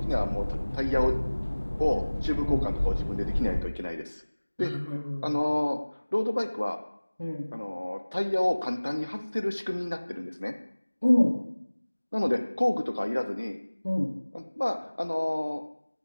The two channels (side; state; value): both; inverted; correlation -1.00